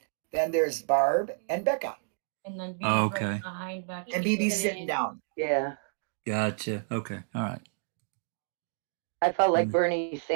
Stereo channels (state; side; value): silent; left; digital silence